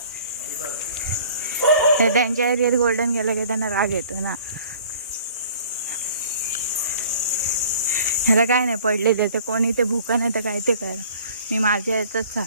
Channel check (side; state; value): both; inverted; correlation -0.51